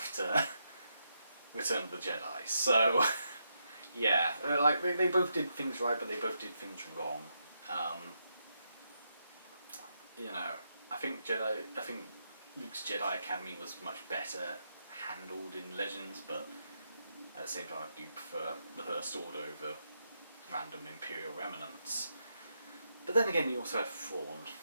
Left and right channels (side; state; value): both; inverted; correlation -0.82